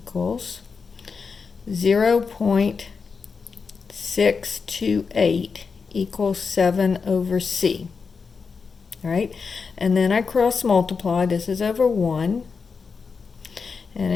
0.628 equals 7 over c. All right, and then I cross multiply. This is over 1, and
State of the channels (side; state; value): right; quieter; 5.2 dB